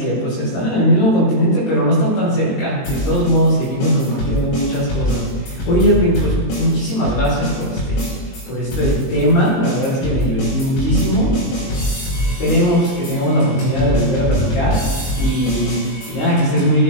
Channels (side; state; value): right; late; 23 ms